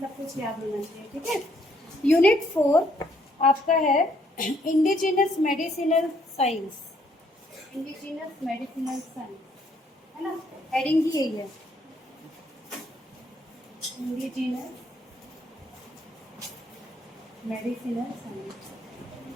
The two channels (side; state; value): both; normal; correlation 0.68